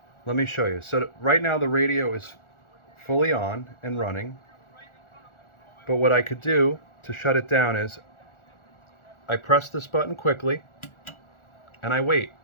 Let me show you. So right now the radio is fully on and running, but what I could do to shut it down is I press this button quickly and I wait,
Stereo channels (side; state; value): right; late; 1.4 ms